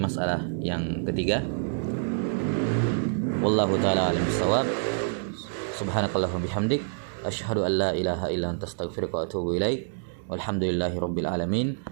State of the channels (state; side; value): silent; left; digital silence